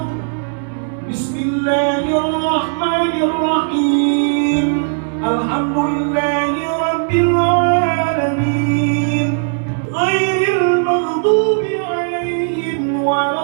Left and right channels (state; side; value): silent; left; digital silence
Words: Bismillahirrahmanirrahim, Alhamdulillahi Rabbil Alamin, Ghairil maghdubi alaihim